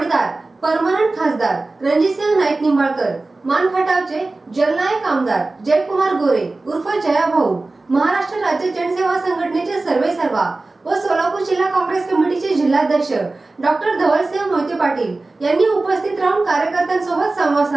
परमनंट खासदार रणजितसिंह नाईक निंबाळकर, मानखटावचे जलनायक आमदार जयकुमार गोरे उर्फ जया भाऊ, महाराष्ट्र राज्य जनसेवा संघटनेचे सर्वेसर्वा व सोलापूर जिल्हा काँग्रेस कमिटीचे जिल्हाध्यक्ष डॉक्टर धवलसिंह मोहिते पाटील यांनी उपस्थित राहून कार्यकर्त्यांसोबत संवाद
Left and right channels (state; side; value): quieter; left; 3.3 dB